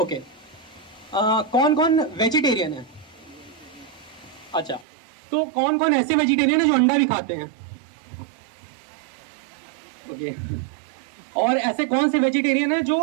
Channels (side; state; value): left; drops out; at 4.9 s